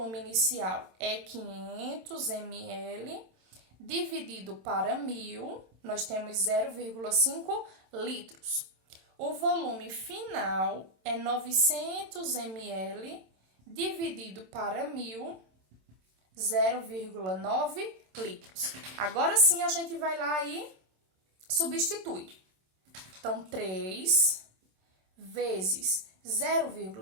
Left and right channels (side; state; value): left; late; 27 ms